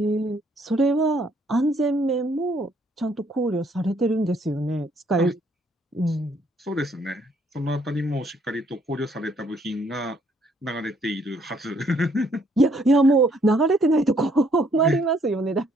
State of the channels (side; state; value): both; normal; correlation 0.66